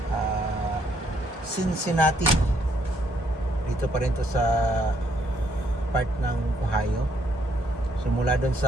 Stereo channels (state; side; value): normal; both; correlation 0.70